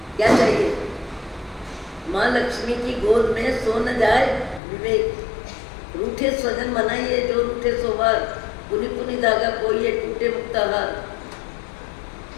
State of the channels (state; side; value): drops out; right; at 4.6 s